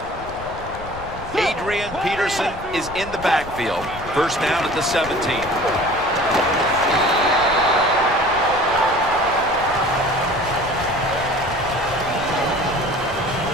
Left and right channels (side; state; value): left; noise; rumble, 13 dB below the sound